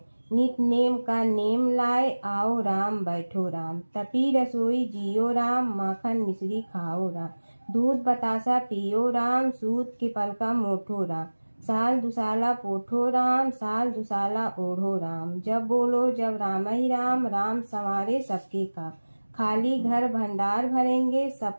नित नेम का नेम लाए, आओ राम बैठो राम, तपी रसोई जियो राम, माखन मिश्री खाओ राम, दूध बतासा पियो राम, सूत के पलका मोठो राम, साल दुसाला पोठो राम, साल दुसाला ओढ़ो राम, जब बोलो जब राम ही राम, राम संवारे सबके काम, खाली घर भंडार भरेंगे,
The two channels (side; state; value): both; inverted; correlation -1.00